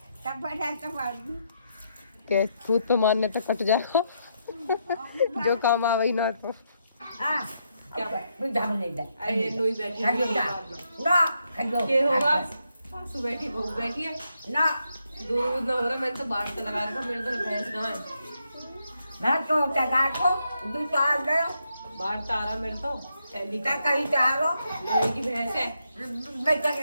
के खुद तो मारने तो कट जाएगा। जो काम आवे ना तो क्या होगा। सासू बैठी बहू बैठी है ना, दूध ना हो रहा, मैंने तो बाहर से लगा रखा, मेरे तो भैंस ना है। मैं तो टगा को दूसरा दे बाहर तारा मेरे तो सैली का का कहीं चारो लोहे की भैंस है। बच्चा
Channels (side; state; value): both; inverted; correlation -0.79